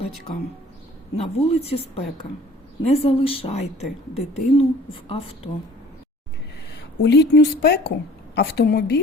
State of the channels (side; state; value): both; normal; correlation 0.50